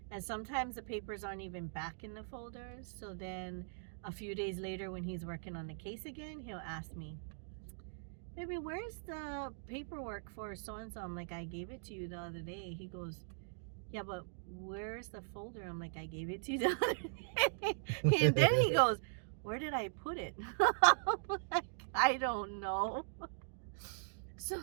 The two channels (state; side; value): silent; left; digital silence